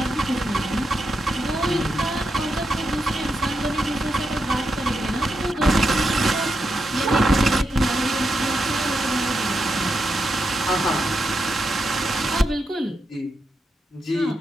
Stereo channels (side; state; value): both; normal; correlation 0.85